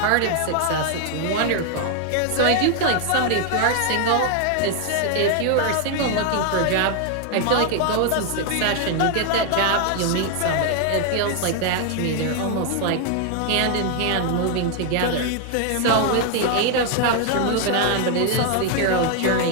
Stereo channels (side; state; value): both; different; correlation 0.00